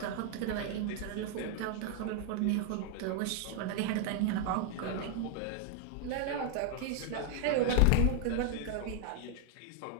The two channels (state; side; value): different; both; correlation 0.00